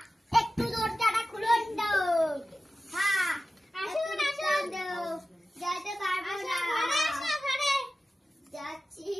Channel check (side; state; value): both; normal; correlation 0.95